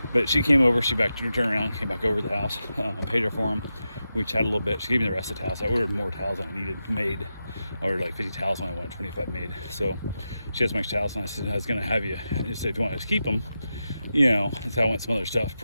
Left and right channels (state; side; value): inverted; both; correlation -0.90